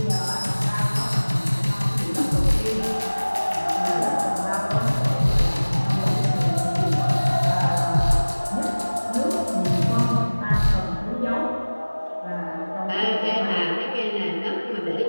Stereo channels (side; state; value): both; inverted; correlation -1.00